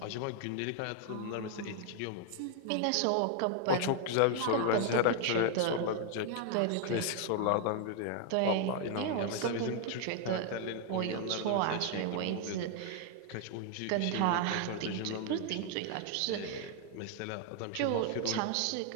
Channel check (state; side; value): different; both; correlation 0.00